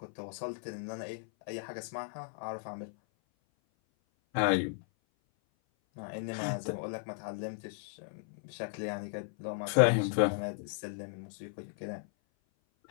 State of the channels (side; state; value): right; silent; 54 dB below the other